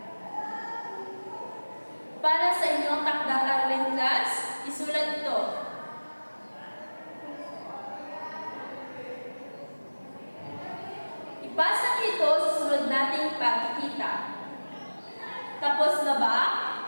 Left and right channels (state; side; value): inverted; both; correlation -1.00